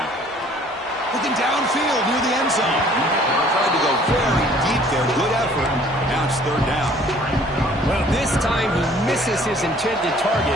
Looking downfield near the end zone. Tried to go very deep there. Good effort. Now it's 3rd down. Well, this time he misses his intended target,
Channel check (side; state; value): both; normal; correlation 0.55